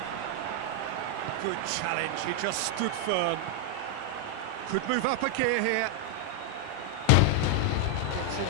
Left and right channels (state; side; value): different; both; correlation 0.00